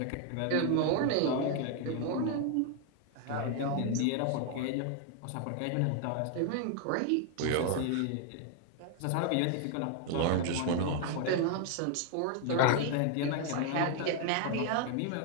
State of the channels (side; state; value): both; different; correlation 0.01